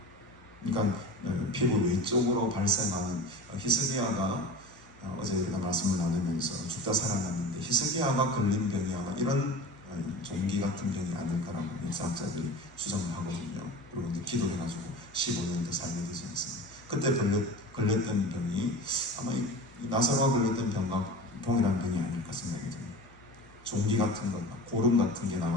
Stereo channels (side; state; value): both; normal; correlation 0.34